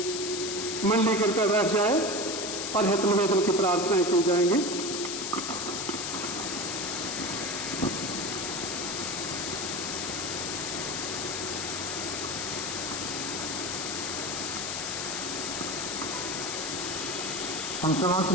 मंडली कृपया बैठ जाए और हित निवेदन की प्रार्थनाएं की जाएंगी। हम समस्त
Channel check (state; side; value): noise; left; hiss, 3 dB below the sound